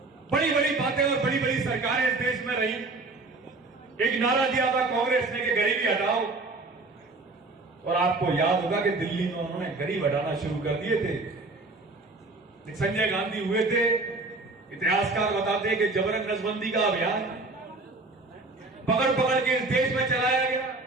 बड़ी बड़ी बातें और बड़ी बड़ी सरकारें इस देश में रही। एक नारा दिया था कांग्रेस ने कि गरीबी हटाओ, और आपको याद होगा कि दिल्ली में उन्होंने गरीब हटाना शुरू कर दिए थे। संजय गांधी हुए थे, इतिहासकार बताते हैं कि जबरन नसबंदी का अभियान पकड़ पकड़ के इस देश में चलाया गया।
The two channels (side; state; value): left; quieter; 3.3 dB